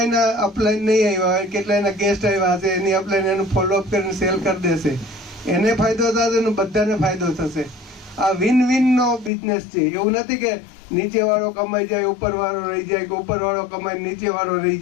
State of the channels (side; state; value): right; drops out; at 9.3 s